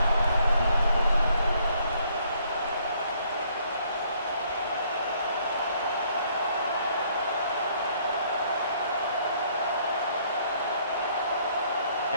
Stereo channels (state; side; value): inverted; both; correlation -0.65